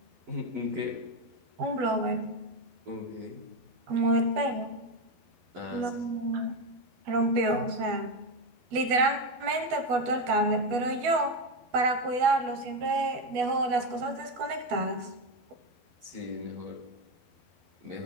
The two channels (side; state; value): left; late; 12 ms